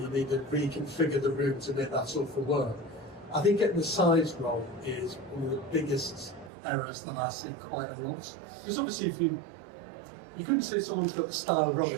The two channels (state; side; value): drops out; left; at 6.5 s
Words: need to reconfigure the room to make that sofa work. I think getting the size wrong is one of the biggest errors that I see quite a lot. Because obviously if you couldn't say someone's got the style wrong